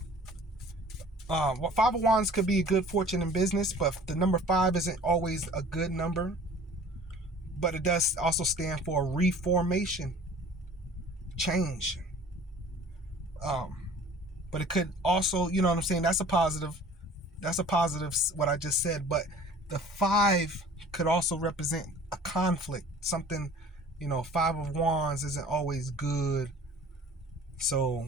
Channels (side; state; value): both; normal; correlation 0.47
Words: Five of Wands could be a good fortune in business, but the number 5 isn't always a good number. But it does also stand for reformation, change. But it could also, you know what I'm saying? That's a positive. What I just said. But the 5 could also represent a conflict, something. 5 of Wands isn't always good. So